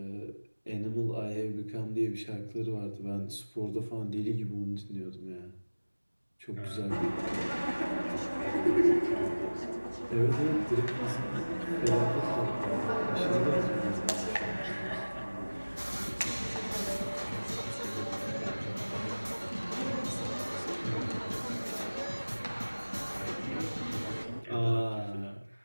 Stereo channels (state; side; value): inverted; both; correlation -1.00